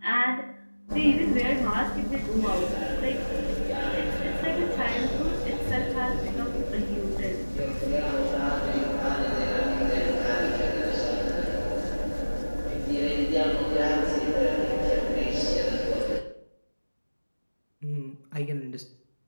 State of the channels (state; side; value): inverted; both; correlation -1.00